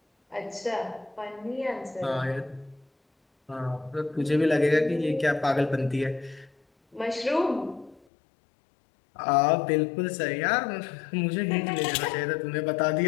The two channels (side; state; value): right; drops out; at 8.0 s